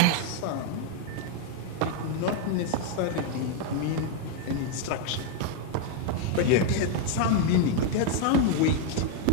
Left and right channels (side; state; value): both; different; correlation 0.01